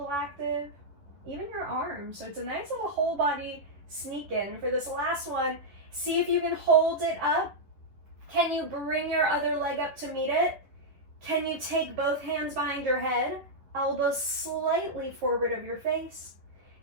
active, even your arms. So it's a nice little whole body sneak in. For this last one, see if you can hold it up. Can you bring your other leg up to meet it? Can you take both hands behind your head, elbows slightly forward of your face?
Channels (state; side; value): late; left; 11 ms